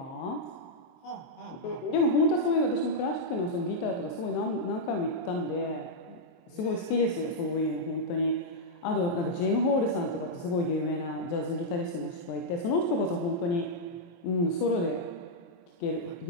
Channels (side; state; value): right; late; 23 ms